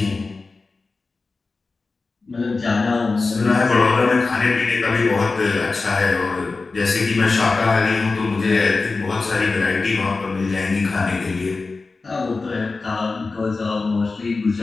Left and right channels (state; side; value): quieter; right; 3.9 dB